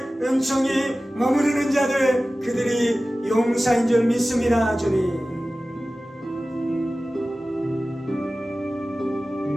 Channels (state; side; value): normal; both; correlation 0.96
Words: 은총이 머무르는 자들, 그들이 용사인 줄 믿습니다. 주님,